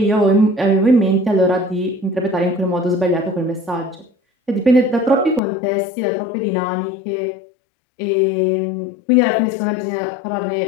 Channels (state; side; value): drops out; right; at 5.4 s